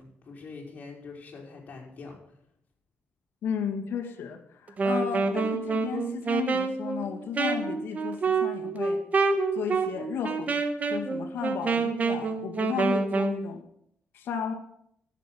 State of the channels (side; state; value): both; normal; correlation 0.72